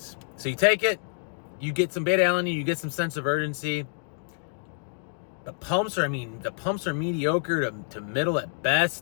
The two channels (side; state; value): right; silent; digital silence